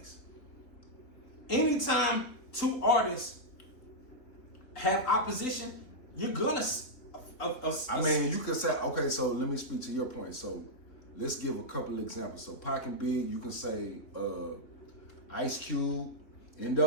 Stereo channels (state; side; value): late; right; 3.6 ms